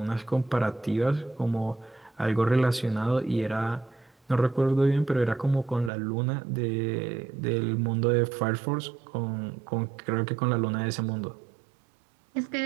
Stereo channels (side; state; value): left; drops out; at 5.9 s